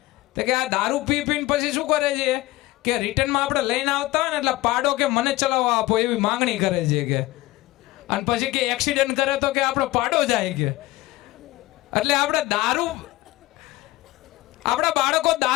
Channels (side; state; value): right; quieter; 18.8 dB